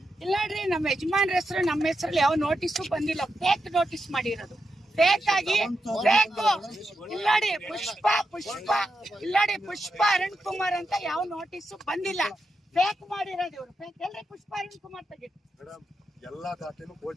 ಇಲ್ಲ ನೋಡ್ರಿ ನಮ್ಮ ಯಜಮಾನ್ರ ಹೆಸರು ನಮ್ಮ ಹೆಸರಲ್ಲಿ ಯಾವ ನೋಟಿಸು ಬಂದಿಲ್ಲ. ಫೇಕ್ ನೋಟಿಸ್ ಮಾಡಿರೋದು ಫೇಕ್ ಆಗಿ ಫೇಕ್. ಇಲ್ಲಾಡಿ ಪುಷ್ಪ ಅರುಣ್ ಕುಮಾರ್ ಅಂತ ಯಾವ ನೋಟಿಸು ಬಂದಿಲ್ಲ. ಫೇಕ್ ಮಾಡಿರೋದು ಇವ್ರು. ಫೇಕ್ ಎಲ್ರಿ ಪುಷ್ಪ ಅರುಣ್ ಕುಮಾರ್ ತೆಗಿ. ಮೇಡಮ್ ಎಲ್ಲಾ ದಾಖಲೆನೂ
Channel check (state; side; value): normal; both; correlation 0.86